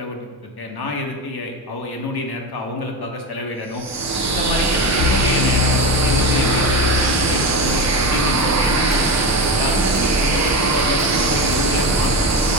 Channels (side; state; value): both; normal; correlation 0.19